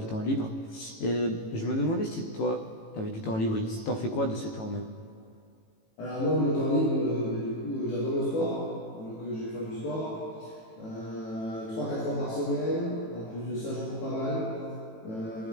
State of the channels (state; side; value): late; right; 18 ms